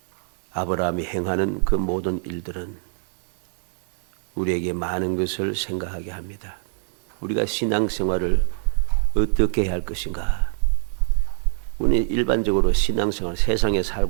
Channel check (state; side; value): silent; left; digital silence